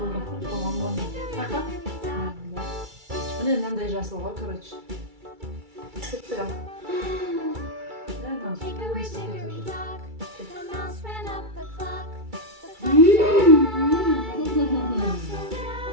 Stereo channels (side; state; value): left; late; 2.3 ms